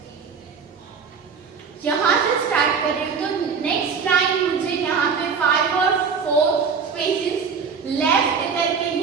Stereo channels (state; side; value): quieter; left; 5.8 dB